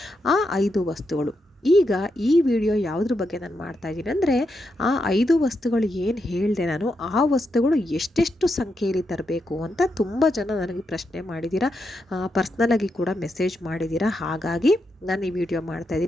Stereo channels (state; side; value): normal; both; correlation 0.84